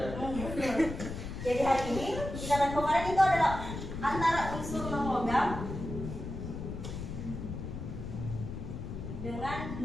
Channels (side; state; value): left; noise; rumble, 7 dB below the sound